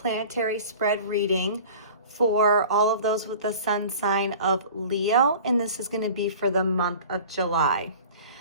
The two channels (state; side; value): inverted; both; correlation -0.42